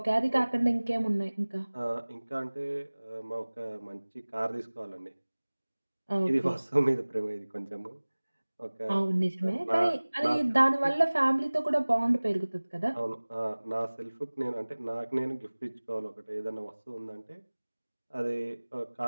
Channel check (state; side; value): inverted; both; correlation -1.00